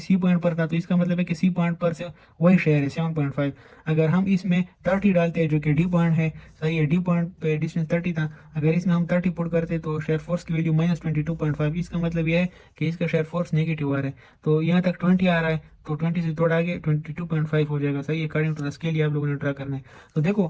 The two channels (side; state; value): both; identical; correlation 1.00